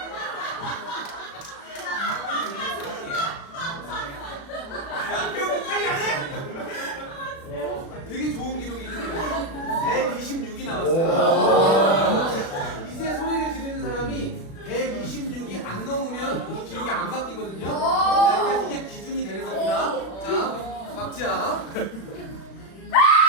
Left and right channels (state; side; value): late; right; 36 ms